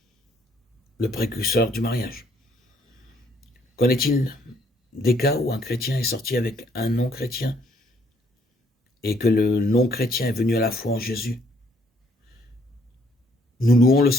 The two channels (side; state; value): both; normal; correlation 0.66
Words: le précurseur du mariage. Qu'en est-il des cas où un chrétien est sorti avec un non-chrétien et que le non-chrétien est venu à la foi en Jésus? Nous louons le